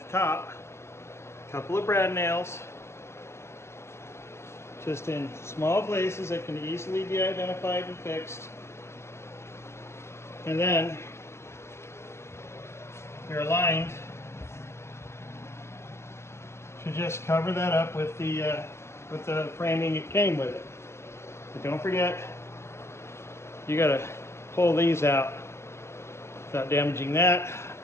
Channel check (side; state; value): right; late; 0.13 ms